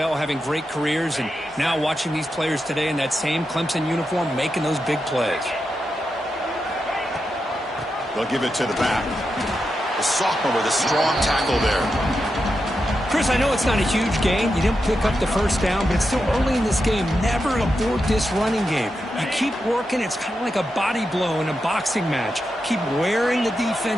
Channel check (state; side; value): normal; both; correlation 0.88